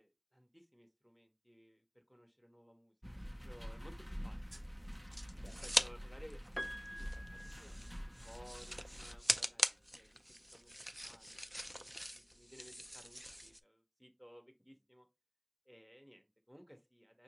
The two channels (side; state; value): both; identical; correlation 1.00